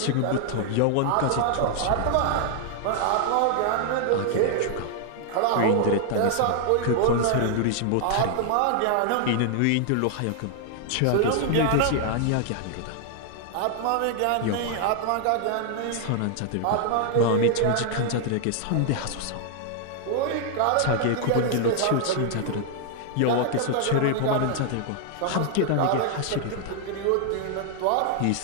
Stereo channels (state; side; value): different; both; correlation 0.00